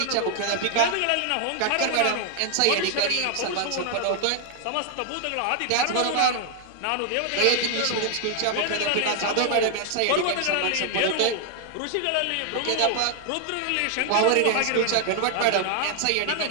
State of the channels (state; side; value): different; both; correlation 0.00